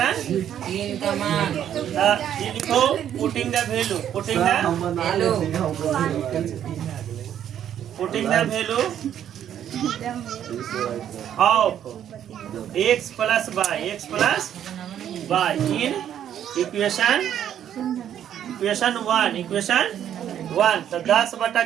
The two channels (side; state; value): left; quieter; 10.1 dB